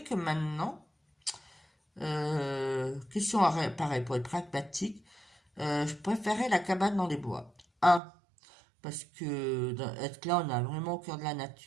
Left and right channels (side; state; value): left; drops out; at 8.0 s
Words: que maintenant, question pareil, pour être pragmatique, je préférais la cabane dans les bois. Un, parce que être là, on a vraiment au cœur de la